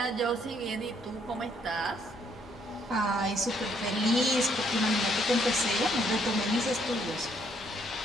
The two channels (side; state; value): both; normal; correlation 0.69